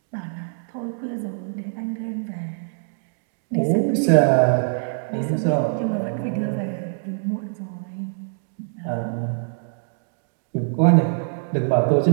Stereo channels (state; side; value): silent; left; digital silence